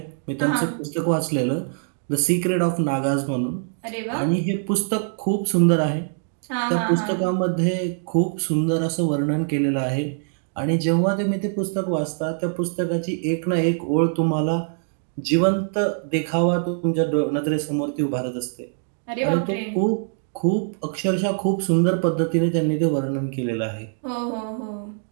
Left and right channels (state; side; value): silent; left; digital silence